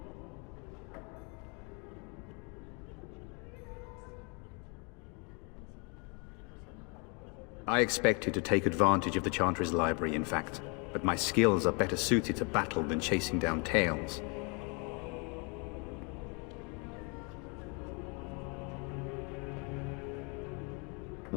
I expected to take advantage of the Chantry's library, in fact, but my skills are better suited to battle than chasing down tales.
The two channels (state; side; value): quieter; right; 33.3 dB